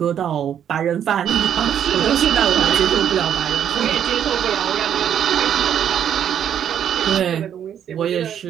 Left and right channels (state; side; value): quieter; left; 9.3 dB